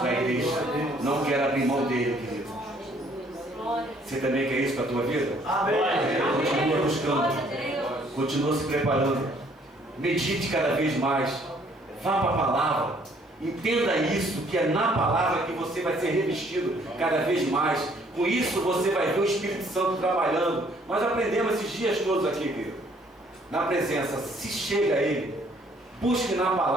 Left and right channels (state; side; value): normal; both; correlation 0.63